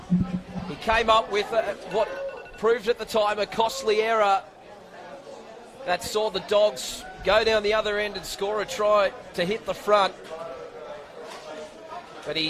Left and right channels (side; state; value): both; identical; correlation 1.00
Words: He came up with what proved at the time a costly error that saw the Dogs go down the other end and score a try to hit the front. But